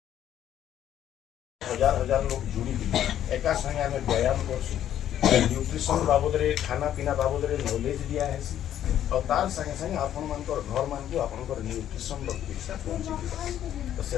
हजार हजार लोग जुड़ी एका संगे आम व्यायाम कर न्यूट्रिशन बाबद खाना पीना बाबद नॉलेज दिया है और तार संगे संगे आपण मान घर मान को आपण न्यूट्रिशन शिक्षा पहुँचे तो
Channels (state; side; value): quieter; right; 11.0 dB